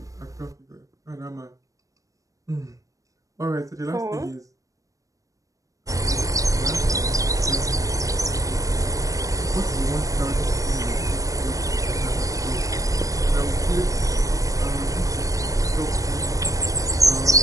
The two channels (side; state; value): left; late; 0.16 ms